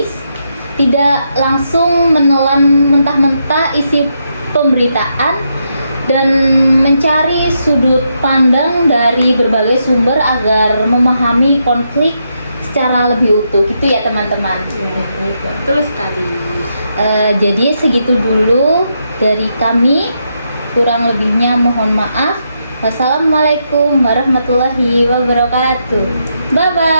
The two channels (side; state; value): both; inverted; correlation -0.81